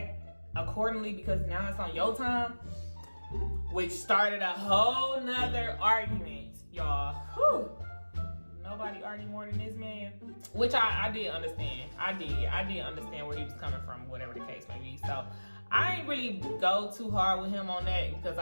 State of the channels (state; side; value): inverted; both; correlation -1.00